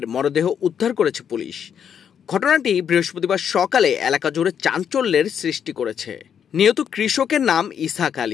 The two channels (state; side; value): quieter; right; 8.1 dB